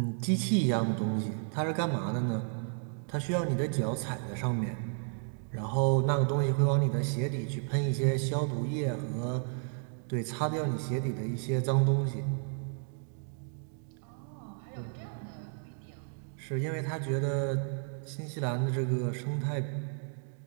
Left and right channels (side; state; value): left; silent; 56 dB below the other